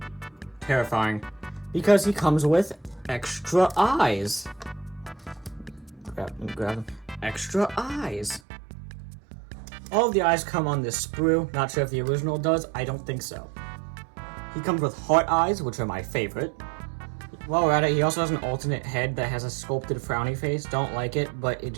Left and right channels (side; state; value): left; drops out; at 8.4 s